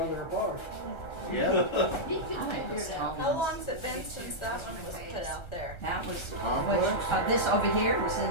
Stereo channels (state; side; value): late; right; 1.3 ms